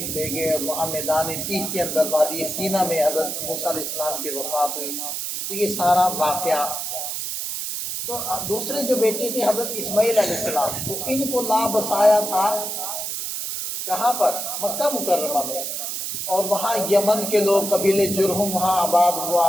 لے گئے، اور وہاں میدان تیہ کے اندر وادی سینا میں حضرت موسیٰ علیہ السلام کی وفات ہوئی۔ تو یہ سارا واقعہ۔ تو دوسرے جو بیٹے تھے حضرت اسماعیل علیہ السلام، تو ان کو لا بسایا تھا کہاں پر؟ مکہ مکرمہ میں۔ اور وہاں یمن کے لوگ قبیلے جرہم وہاں آباد ہوا،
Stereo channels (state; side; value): noise; right; hiss, 4 dB below the sound